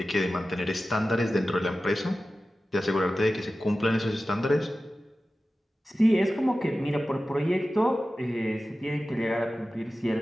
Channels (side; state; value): both; normal; correlation 0.95